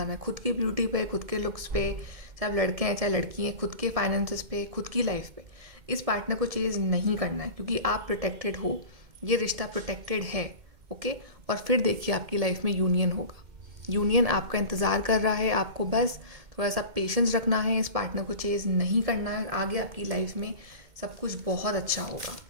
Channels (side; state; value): left; late; 2.1 ms